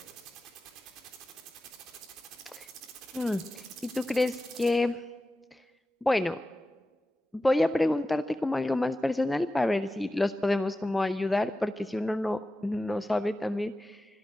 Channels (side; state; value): both; normal; correlation 0.94